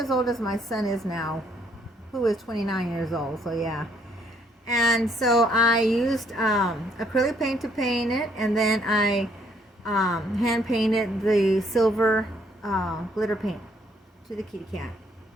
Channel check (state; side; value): normal; both; correlation 0.68